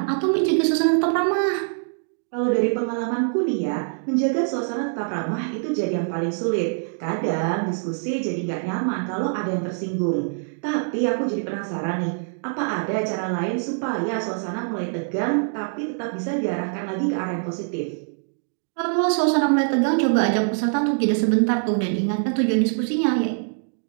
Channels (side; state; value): left; silent; digital silence